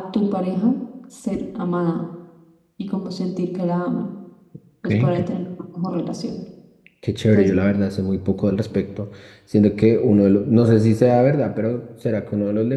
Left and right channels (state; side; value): identical; both; correlation 1.00